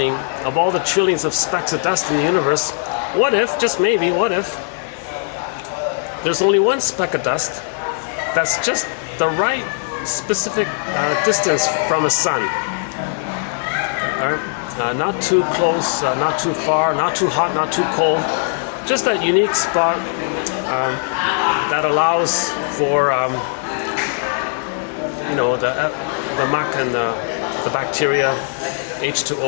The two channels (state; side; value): silent; right; 60 dB below the other